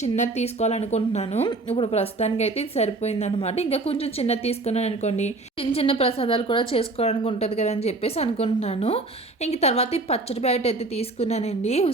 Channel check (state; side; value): quieter; left; 3.2 dB